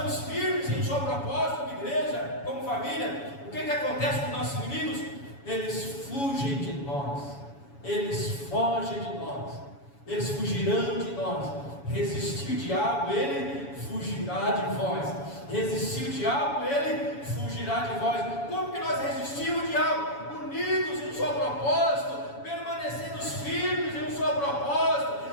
firmes em sua proposta, como igreja, como família, o que acontece com os nossos inimigos? Eles fugem de nós, eles fogem de nós, eles fugirão de nós. Resistir o diabo, ele fugirá de vós. Resistir o diabo, ele fugirá de vós. Como que nós resistimos o diabo? Unidos em seu propósito, permanecendo firmes em seu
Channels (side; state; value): right; late; 7.1 ms